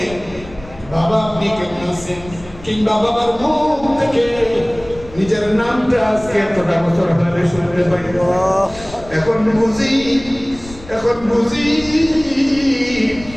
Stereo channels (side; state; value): left; noise; rumble, 18 dB below the sound